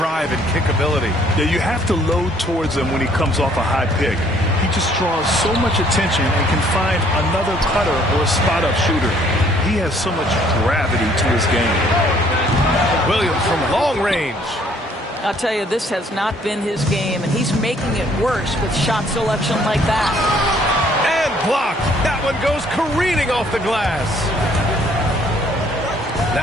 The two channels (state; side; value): normal; both; correlation 0.62